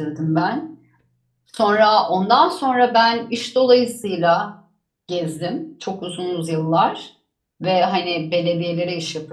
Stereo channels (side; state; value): both; identical; correlation 1.00